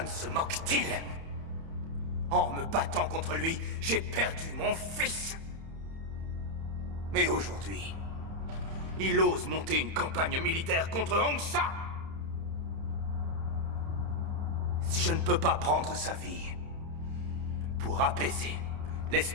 se moque-t-il? En me battant contre lui, j'ai perdu mon fils. Mais aujourd'hui, il ose monter une campagne militaire contre Hongsa. Si je ne peux pas prendre sa vie pour apaiser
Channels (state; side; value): late; left; 31 ms